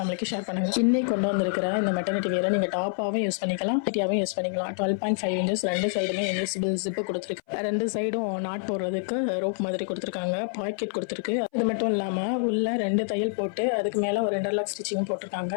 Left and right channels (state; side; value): silent; right; 58 dB below the other